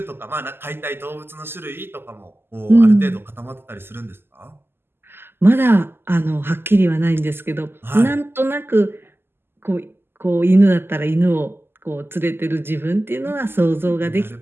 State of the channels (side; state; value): left; late; 0.11 ms